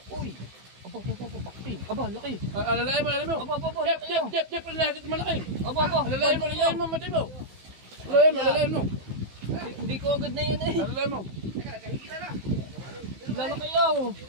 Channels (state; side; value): late; left; 15 ms